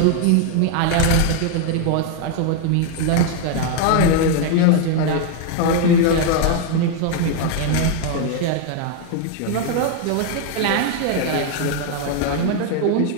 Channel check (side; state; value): both; different; correlation 0.01